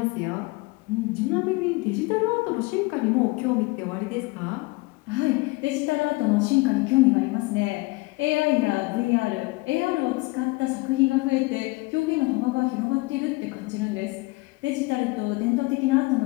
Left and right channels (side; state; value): right; quieter; 23.9 dB